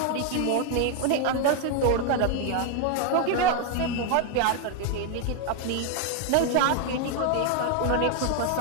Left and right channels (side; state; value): both; different; correlation 0.01